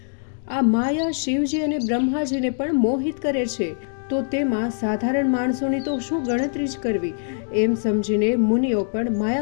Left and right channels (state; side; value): silent; right; digital silence